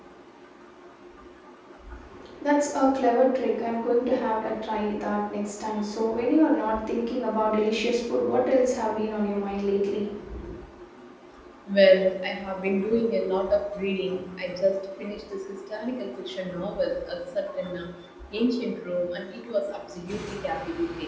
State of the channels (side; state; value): both; identical; correlation 1.00